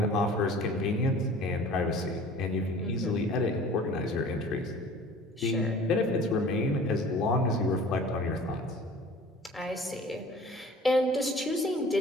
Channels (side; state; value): both; normal; correlation 0.45